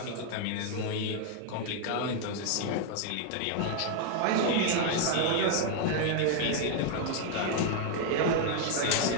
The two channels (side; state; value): both; different; correlation 0.00